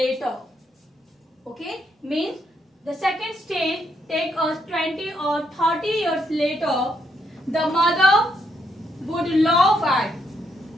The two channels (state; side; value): normal; both; correlation 0.76